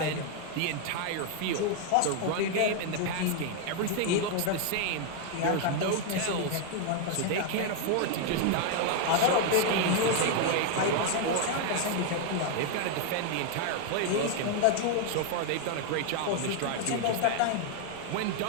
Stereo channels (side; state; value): both; different; correlation 0.00